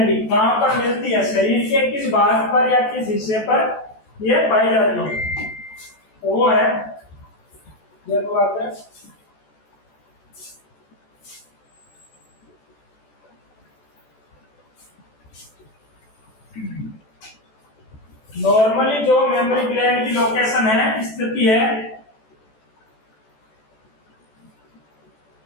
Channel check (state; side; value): late; right; 14 ms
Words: कहां पर मिलती है, शरीर के किस भाग पर या किस हिस्से पर यह पाई जाती है। तो वो है, देखो आप नॉर्मली जो मेमोरी ग्लैंड की लोकेशन है, स्थिति है,